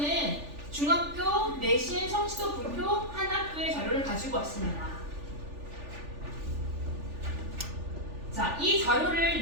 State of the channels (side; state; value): left; late; 3.4 ms